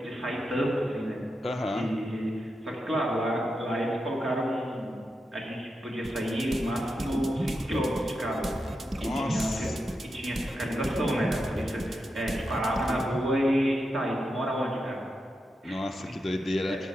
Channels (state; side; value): normal; both; correlation 0.87